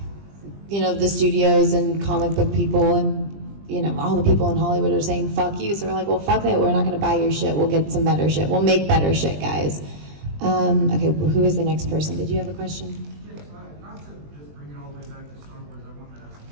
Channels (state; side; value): late; left; 20 ms